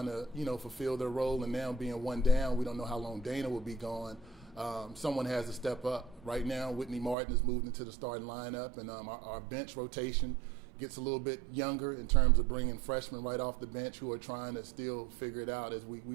to, fulfill their role. And now being one down, we don't know how long Dana will be gone. Someone has to step up. Right now, Whitney Martin has moved into the starting lineup, and our bench rotation gets a little bit younger in terms of bringing freshmen right off the bench who are trying to still figure it out as we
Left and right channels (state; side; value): drops out; left; at 7.2 s